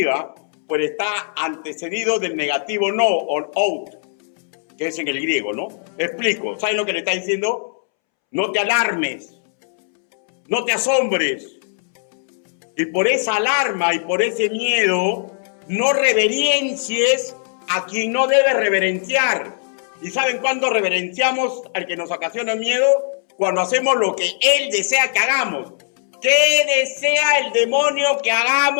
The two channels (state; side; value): silent; right; 66 dB below the other